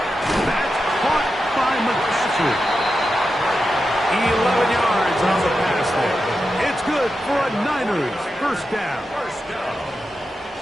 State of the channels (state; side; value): normal; both; correlation 0.89